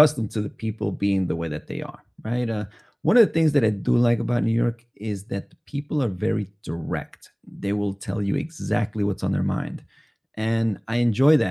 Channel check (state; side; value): identical; both; correlation 1.00